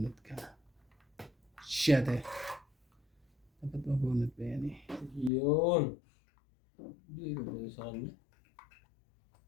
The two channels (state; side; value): drops out; right; at 5.3 s